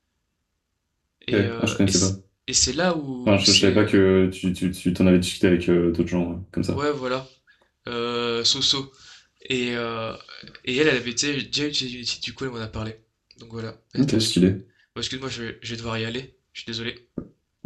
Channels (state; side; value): identical; both; correlation 1.00